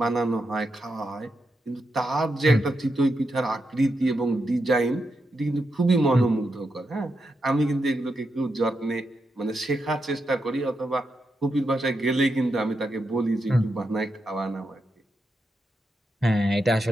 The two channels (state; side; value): normal; both; correlation 0.85